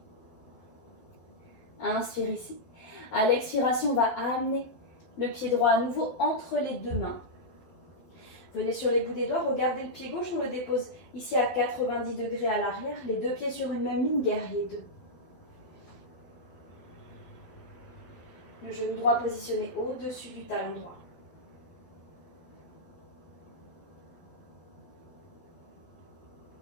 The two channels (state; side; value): late; right; 12 ms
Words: Inspire ici. À l'expiration, on va amener le pied droit à nouveau entre les deux mains. Venez sur les bouts des doigts, regardez le pied gauche, on le dépose ici à 90 degrés à l'arrière. Les deux pieds sur une même ligne, guerrier 2. Le genou droit positionné au-dessus du talon droit.